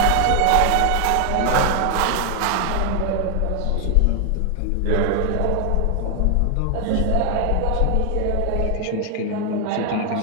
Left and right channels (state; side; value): different; both; correlation 0.00